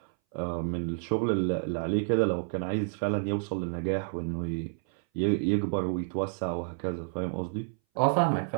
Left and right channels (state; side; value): silent; left; 58 dB below the other